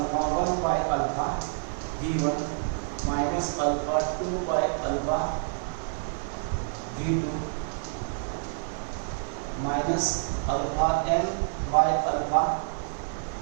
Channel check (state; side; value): silent; left; 59 dB below the other